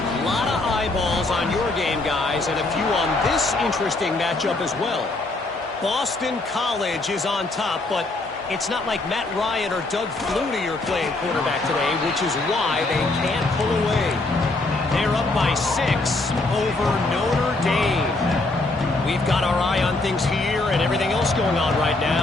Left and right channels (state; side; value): quieter; right; 3.1 dB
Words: lot of eyeballs on your game, guys, and a few on this interesting matchup as well. Boston College is on top, but it's not like Matt Ryan or Doug Flutie are playing quarterback today, which is why they can't pull away. They're up by 6 over Notre Dame. We've got our eye on things here and everything else going on right